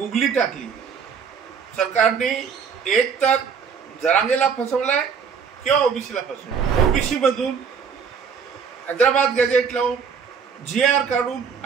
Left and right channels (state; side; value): quieter; left; 6.4 dB